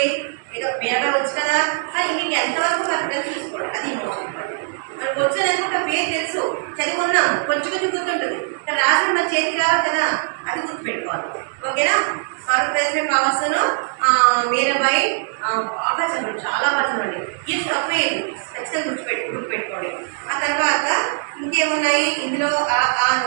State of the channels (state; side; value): silent; left; digital silence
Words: ఏదో మీరాబాయి వచ్చు కదా, కానీ మీకు ఎంతవరకు కరెక్ట్ చూసుకోండి, అది మోస్ట్ ఇంపార్టెంట్. మనకు వచ్చని అనుకుంటే పేరు తెలుసు, చదువుకున్నాము, కొంచెం గుర్తుంటుంది, రాసిన మన చేతికి రావాలి కదా, అది గుర్తుపెట్టుకోవాలి. ఓకేనా? పవర్స్ను మీరాబాయి బాగా చదవండి, చాలా బాగా చదవండి. ఇది తప్పేది ఖచ్చితంగా గుర్తుపెట్టుకోండి. ఆ తర్వాత ఇంకేమున్నాయి ఇందులో